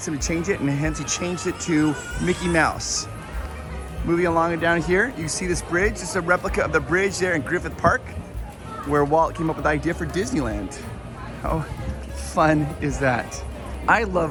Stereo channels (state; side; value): identical; both; correlation 1.00